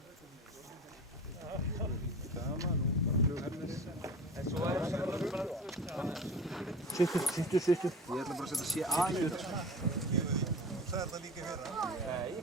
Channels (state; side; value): normal; both; correlation 0.35